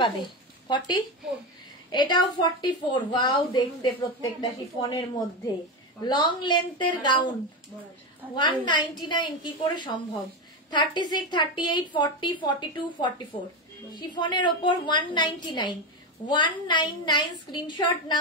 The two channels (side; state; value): both; normal; correlation 0.15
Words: পাবে। 40 এটাও 44। ওয়াও দেখতে প্রত্যেকটা শিফনের মধ্যে লং লেন্থের গাউন 199 কি করে সম্ভব? 36, 38, 40, 42, 44 শিফনের ওপর 199, 199 স্ক্রিনশট